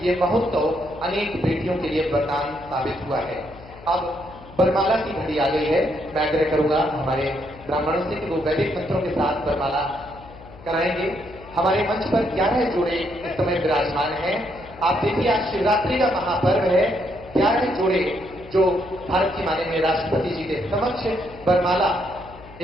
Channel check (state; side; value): noise; left; hum, 19 dB below the sound